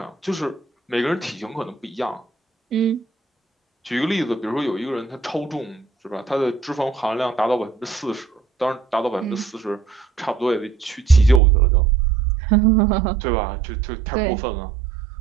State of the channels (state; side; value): drops out; left; at 11.4 s